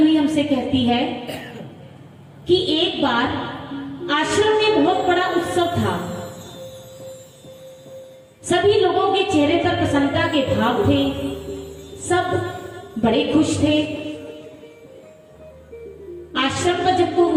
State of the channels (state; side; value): identical; both; correlation 1.00